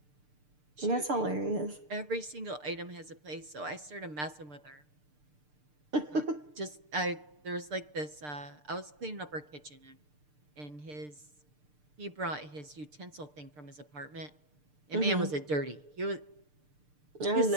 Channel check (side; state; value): left; late; 6.7 ms